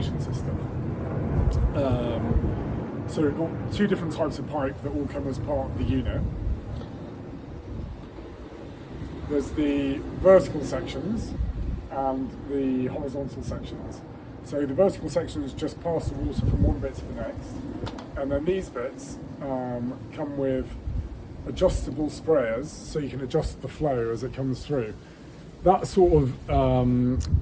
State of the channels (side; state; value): both; identical; correlation 1.00